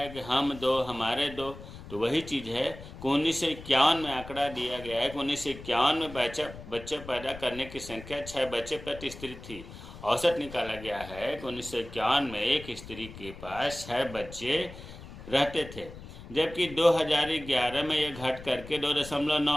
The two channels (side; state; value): left; noise; rumble, 14 dB below the sound